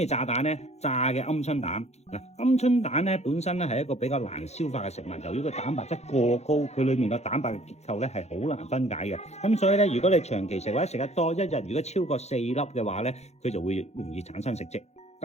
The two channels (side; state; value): right; late; 0.32 ms